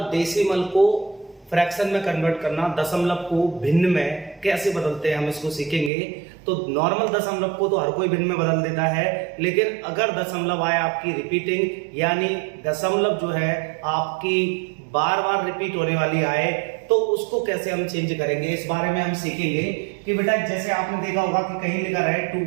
डेसिमल को फ्रैक्शन में कन्वर्ट करना, दशमलव को भिन्न में कैसे बदलते हैं हम इसको सीखेंगे। तो नॉर्मल दशमलव को तो हर कोई भिन्न में बदल देता है, लेकिन अगर दशमलव आए आपकी रिपीटिंग, यानी दशमलव जो है आपकी बार बार रिपीट होने वाली आए, तो उसको कैसे हम चेंज करेंगे, इस बारे में हम सीखेंगे। कि बेटा जैसे आपने देखा होगा कि कहीं लिखा है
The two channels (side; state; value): left; drops out; at 5.9 s